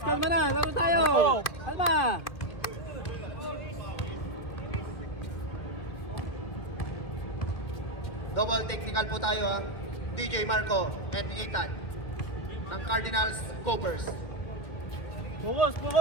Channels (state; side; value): late; right; 1.8 ms